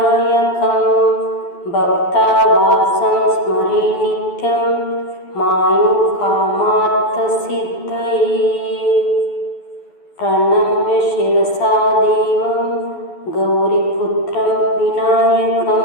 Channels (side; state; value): right; late; 12 ms